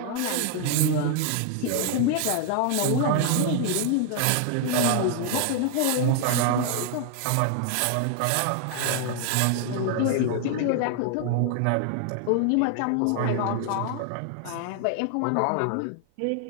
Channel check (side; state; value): both; different; correlation 0.00